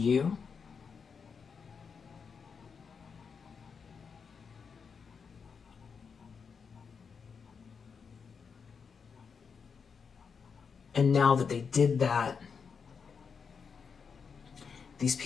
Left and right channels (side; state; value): right; quieter; 5.9 dB